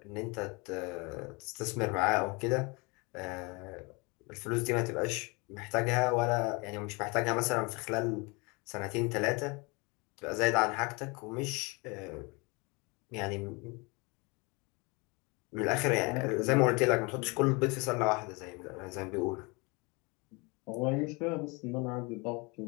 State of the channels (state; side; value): quieter; right; 28.3 dB